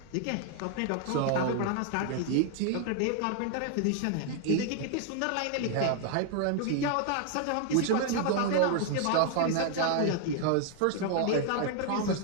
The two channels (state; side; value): different; both; correlation 0.00